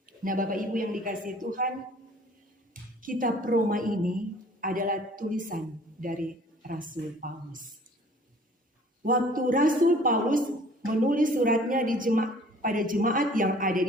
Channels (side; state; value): both; normal; correlation 0.53